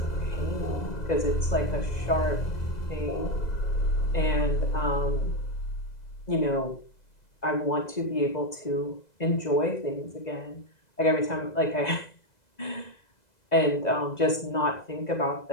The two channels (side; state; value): right; late; 2.0 ms